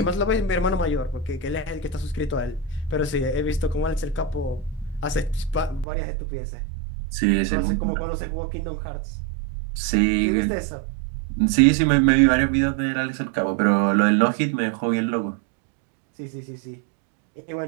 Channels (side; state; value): left; drops out; at 5.9 s